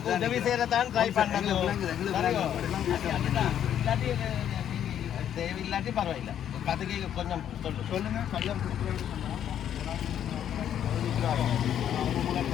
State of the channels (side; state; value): right; quieter; 9.9 dB